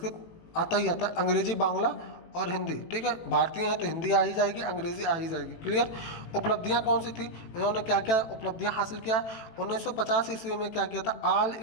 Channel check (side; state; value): right; late; 18 ms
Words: आता ही आता है। अंग्रेजी, बांग्ला और हिंदी, ठीक है। भारतीय हैं तो हिंदी आ ही जाएगी, अंग्रेजी आ ही जाएगी, क्लियर। उपलब्धियां कौन सी थी? इन्होंने क्या क्या उपलब्धियां हासिल किया? 1950 ईस्वी में क्या किया था? ऑल